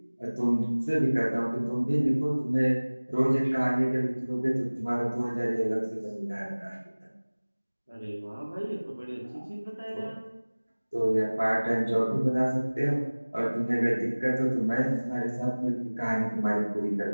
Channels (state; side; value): inverted; both; correlation -1.00